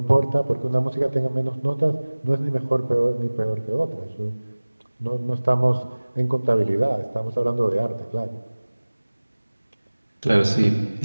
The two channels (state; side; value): inverted; both; correlation -1.00